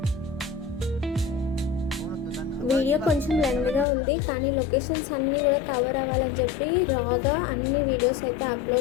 వీడియో కొంచెం లెంగ్గా ఉంది, కానీ లొకేషన్స్ అన్నీ కూడా కవర్ అవ్వాలని చెప్పి రాగా అన్ని వీడియోస్ అయితే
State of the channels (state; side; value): drops out; right; at 3.9 s